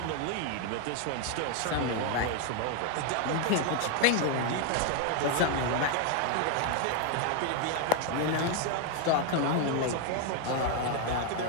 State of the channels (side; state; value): both; different; correlation 0.01